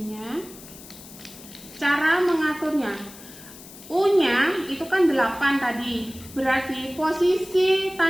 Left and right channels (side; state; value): left; noise; hiss, 18 dB below the sound